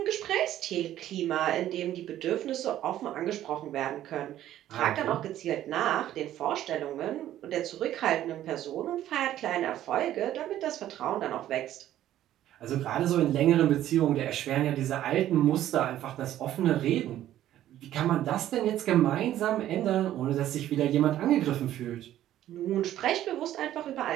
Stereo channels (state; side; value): quieter; left; 12.6 dB